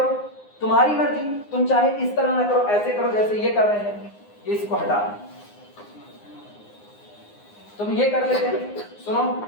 तुम्हारी मर्जी, तुम चाहे इस तरह ना करो, ऐसे करो जैसे ये कर रहे हैं, ये इसको हटा तुम ये कर लेते हैं। सुनो,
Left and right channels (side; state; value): right; late; 9.7 ms